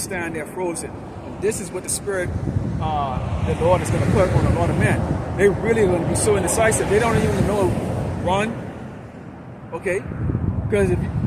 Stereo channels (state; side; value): identical; both; correlation 1.00